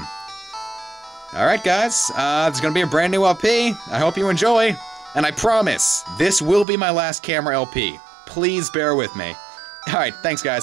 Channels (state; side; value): drops out; left; at 6.7 s